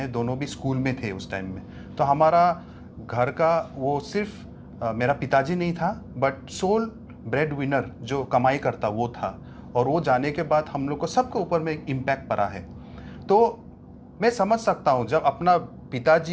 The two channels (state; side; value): identical; both; correlation 1.00